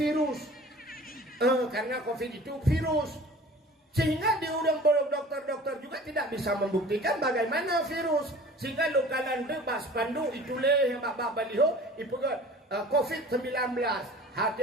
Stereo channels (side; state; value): both; normal; correlation 0.44